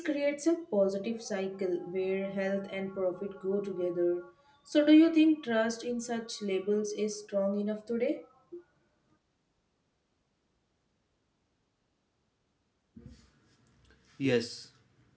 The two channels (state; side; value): identical; both; correlation 1.00